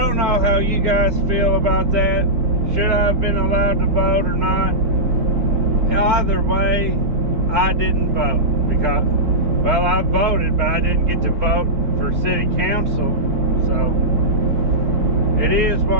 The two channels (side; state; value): left; late; 4.4 ms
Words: know how you guys feel about that. Should I have been allowed to vote or not? Either way, I didn't vote, because, well, I voted, but I didn't get to vote for city council. So it is